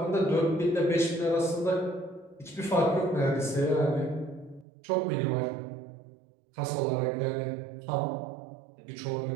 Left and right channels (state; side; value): drops out; left; at 4.7 s